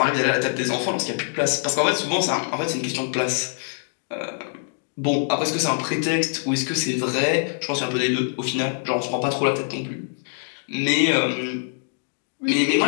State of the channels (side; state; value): right; silent; digital silence